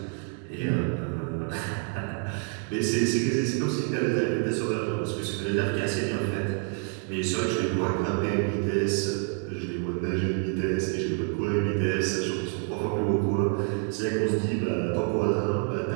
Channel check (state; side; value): quieter; left; 37.5 dB